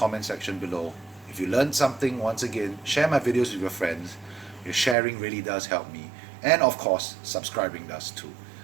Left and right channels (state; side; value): drops out; left; at 5.0 s